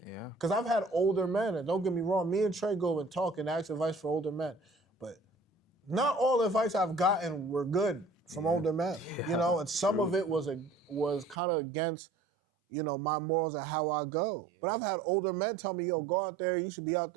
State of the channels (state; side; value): drops out; left; at 11.4 s